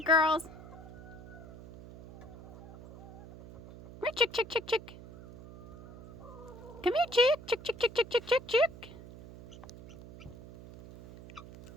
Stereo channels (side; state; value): right; noise; hum, 16 dB below the sound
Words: girls. Come here, chick, chick, chick, chick. Come here, chick, chick, chick, chick, chick, chick, chick, chick.